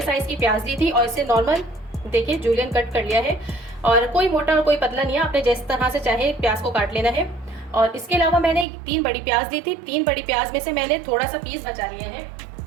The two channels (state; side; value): drops out; left; at 8.7 s